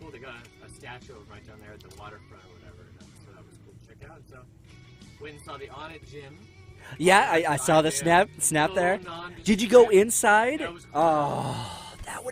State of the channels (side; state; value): both; identical; correlation 1.00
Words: They got a statue right down there at the waterfront or whatever. So that was cool to check out. So went and saw the On It gym. Yeah, I saw the snap there. Did you go inside? That was cool. Oh, that